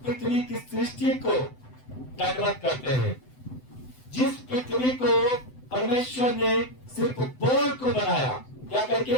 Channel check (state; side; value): late; right; 7.9 ms